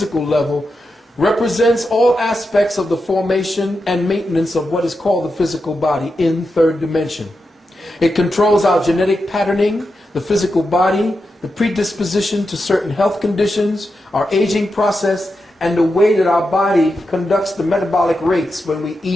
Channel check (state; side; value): normal; both; correlation 0.88